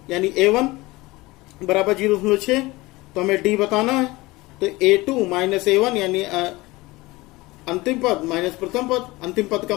यानी A1 बराबर 0.6, तो हमें D बताना है। तो A2 माइनस A1 यानी अंतिम पद माइनस प्रथम पद, अंतिम पद का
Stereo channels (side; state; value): right; quieter; 21.1 dB